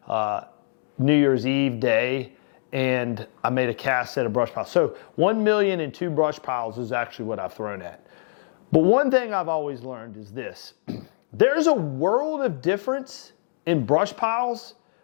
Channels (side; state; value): right; silent; digital silence